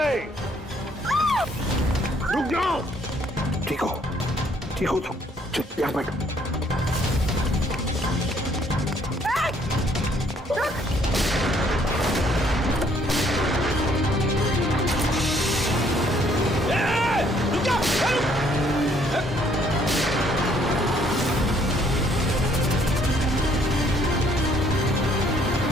रुक जाओ। ठीक हो तुम चुप यहाँ बैठो।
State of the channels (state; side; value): normal; both; correlation 0.65